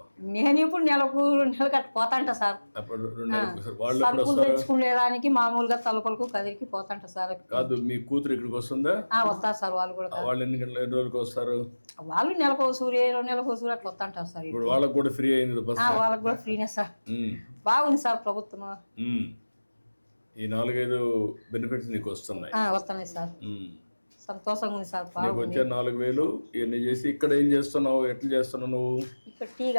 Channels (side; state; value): both; inverted; correlation -1.00